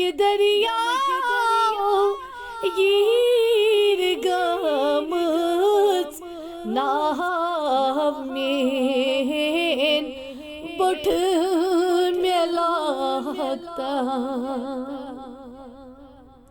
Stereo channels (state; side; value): identical; both; correlation 1.00